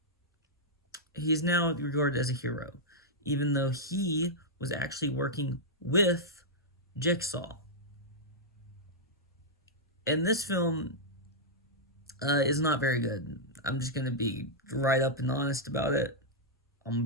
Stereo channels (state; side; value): normal; both; correlation -0.08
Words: he's now regarded as a hero, even though he was actually working with Jigsaw. And this film is not very good. I'm just gonna be right up and honest about it. I'm gonna